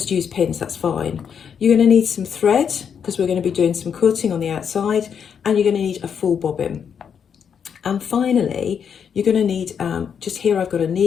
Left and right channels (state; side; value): quieter; right; 7.4 dB